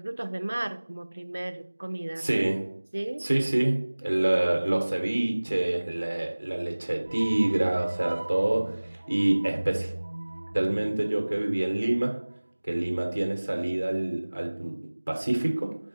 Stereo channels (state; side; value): inverted; both; correlation -1.00